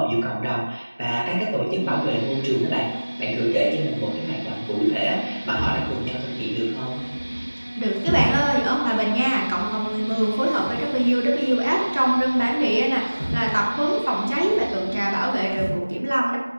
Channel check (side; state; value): both; inverted; correlation -1.00